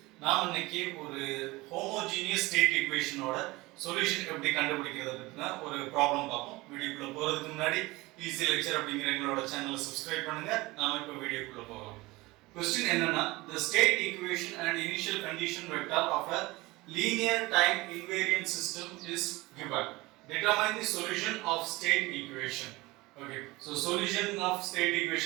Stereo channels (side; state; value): left; quieter; 21.4 dB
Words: நாம் இன்னைக்கு ஒரு ஹோமோஜீனியஸ் ஸ்டேட் ஈக்குவேஷனோட சொல்யூஷன் எப்படி கண்டுபிடிக்கிறது பத்தின ஒரு ப்ராப்ளம் பார்ப்போம். வீடியோக்குள்ள போறதுக்கு முன்னாடி ஈஸி லெக்சர் அப்படிங்கிற எங்களோட சேனலை சப்ஸ்கிரைப் பண்ணுங்க. நாம இப்போ வீடியோக்குள்ள போகலாம். கொஸ்டின் என்னன்னா, the state equation and initial condition vector of a linear time invariant system is given. Determine the solution of state equation. Okay, so solution of state